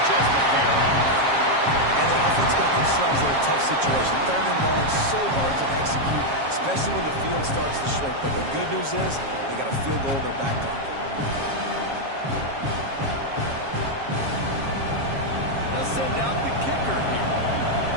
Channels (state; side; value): late; left; 7.3 ms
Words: just a hair off. And the offense got themselves in a tough situation. 3rd and long, so hard to execute, especially when the field starts to shrink. But the good news is they got a field goal in their back pocket. They'll send out the kicker here.